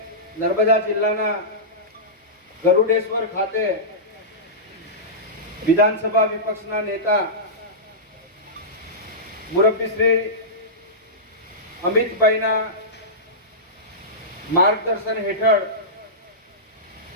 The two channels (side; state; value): both; normal; correlation -0.16